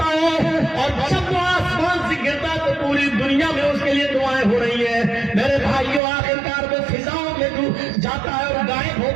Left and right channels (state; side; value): drops out; left; at 6.0 s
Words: ہے اور جب وہ آسمان سے گرتا تو پوری دنیا میں اس کے لیے دعائیں ہو رہی ہیں. میرے بھائیوں آخرکار وہ فضاؤں میں جاتا ہے اور غائب ہو